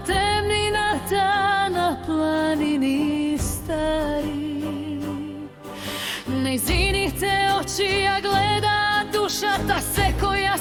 temnina ta na planini stari. Nizini te oči ja gleda duša ta se koja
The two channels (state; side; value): identical; both; correlation 1.00